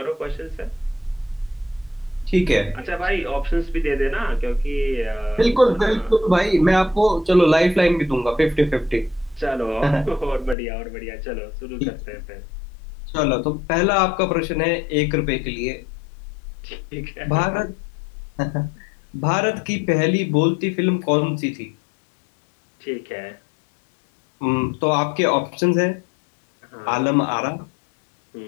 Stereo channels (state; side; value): drops out; right; at 10.6 s